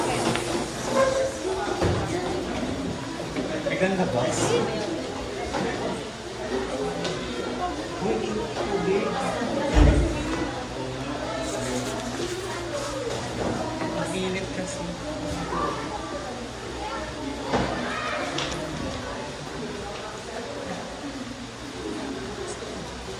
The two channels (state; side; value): identical; both; correlation 1.00